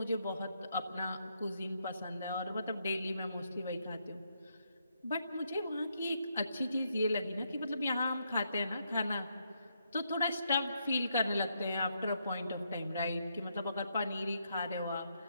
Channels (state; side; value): inverted; both; correlation -0.78